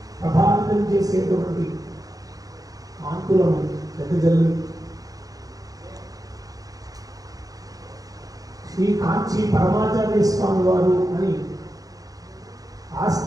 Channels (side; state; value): left; late; 0.17 ms